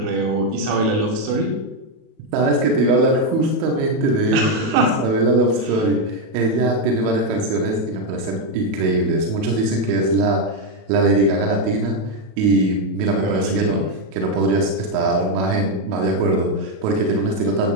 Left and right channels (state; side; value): late; left; 37 ms